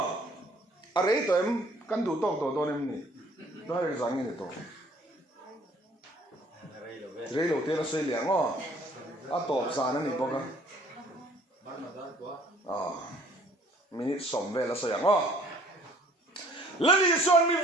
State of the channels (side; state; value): both; normal; correlation 0.57